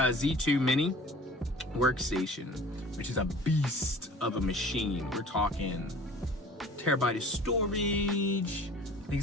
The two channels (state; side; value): normal; both; correlation 0.45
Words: Mini workstation, which is a beast of a machine. We're talking terabyte of storage. I think